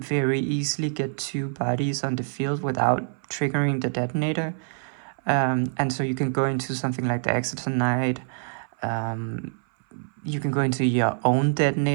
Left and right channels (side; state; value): left; silent; 57 dB below the other